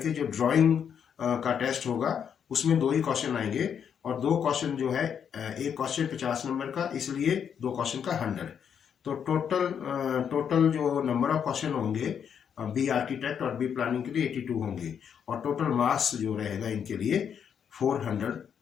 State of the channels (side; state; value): right; quieter; 7.9 dB